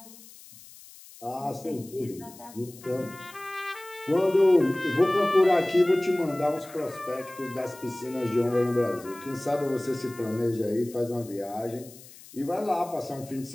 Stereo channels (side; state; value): left; noise; hiss, 20 dB below the sound